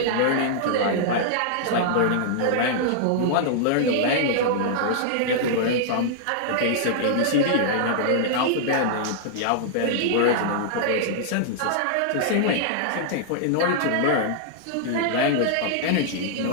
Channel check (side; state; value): both; different; correlation -0.01